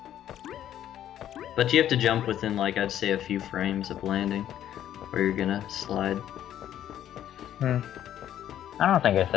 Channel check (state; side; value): quieter; right; 11.2 dB